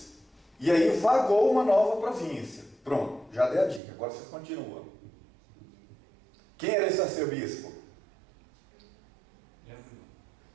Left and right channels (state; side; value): drops out; left; at 3.8 s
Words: E aí vagou uma nova província. Pronto, já dei a dica, agora vocês continuam. Quem era esse arcebispo?